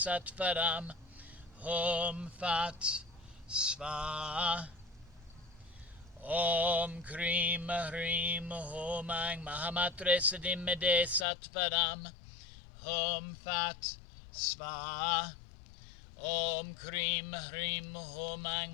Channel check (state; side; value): drops out; right; at 11.2 s